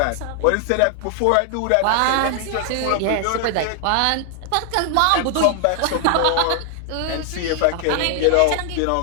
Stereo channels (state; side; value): different; both; correlation 0.00